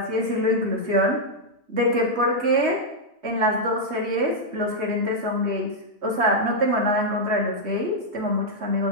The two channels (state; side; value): late; left; 3.2 ms